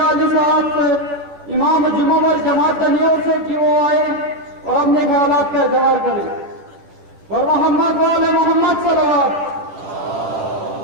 علی صاحب سے، امام جمعہ اور جماعت نیور سے، کہ وہ آئے اور اپنے خیالات کا اظہار کریں۔ اور محمد وعلی محمد صلوات۔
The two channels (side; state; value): left; late; 10 ms